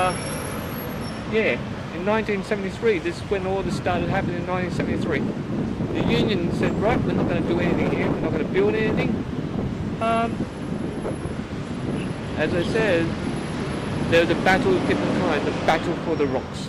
in 1973, this is when all this started happening in 1973. The union said, right, we're not going to do anything here, we're not going to build anything. As I said, there was a battle of different kinds, the battle for the rocks.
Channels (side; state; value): both; identical; correlation 1.00